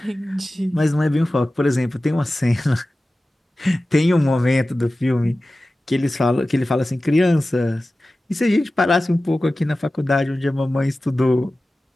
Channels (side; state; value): both; normal; correlation 0.96